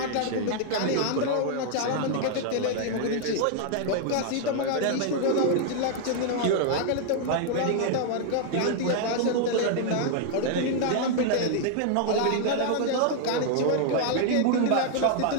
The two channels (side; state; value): both; different; correlation 0.00